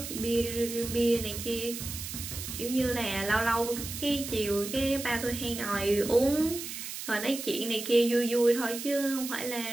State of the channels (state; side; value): noise; right; hiss, 8 dB below the sound